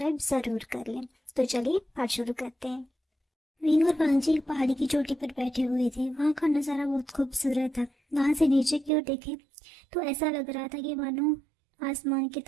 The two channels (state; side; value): drops out; left; at 8.9 s